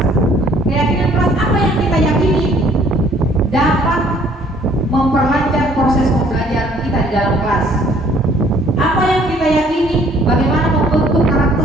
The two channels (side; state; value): both; normal; correlation 0.59